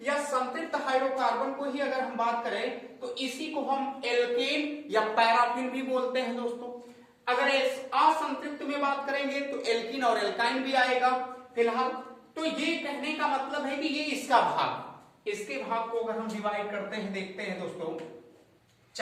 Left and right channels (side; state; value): both; identical; correlation 1.00